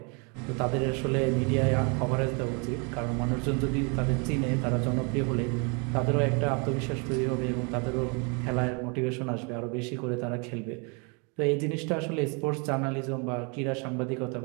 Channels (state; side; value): quieter; left; 33.8 dB